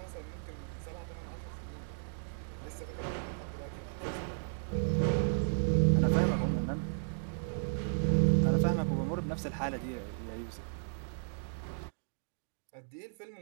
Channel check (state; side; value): silent; left; digital silence